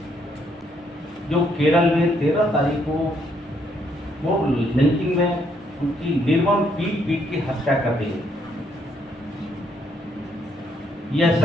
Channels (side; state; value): both; normal; correlation 0.71